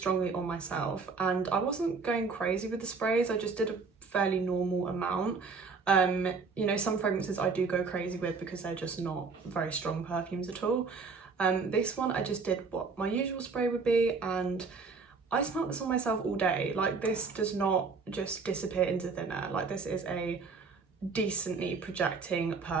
on myself, and I wasn't going crazy with the sprays. I just did a fairly normal amount. You know, some fragrances I do go crazy with because they're just not very strong perfumes at all. This one I just did what my usual spray would be, and I smelled this on myself all day. Like this does not just disappear into thin air. Like this is a decently projecting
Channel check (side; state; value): left; quieter; 4.7 dB